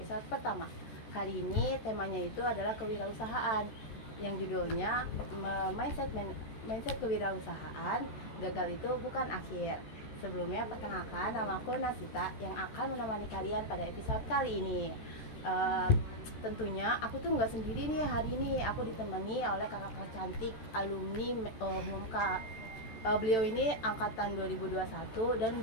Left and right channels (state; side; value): late; right; 14 ms